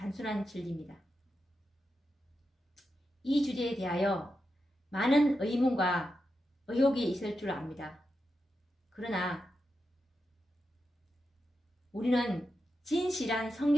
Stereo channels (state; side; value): normal; both; correlation 0.88